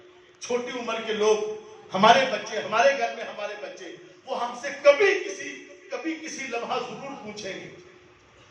چھوٹی عمر کے لوگ، ہمارے بچے، ہمارے گھر میں ہمارے بچے، وہ ہم سے کبھی کسی لمحہ ضرور پوچھیں گے۔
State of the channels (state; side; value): identical; both; correlation 1.00